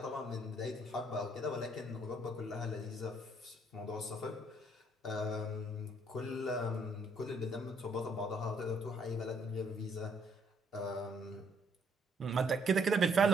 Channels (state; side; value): normal; both; correlation 0.68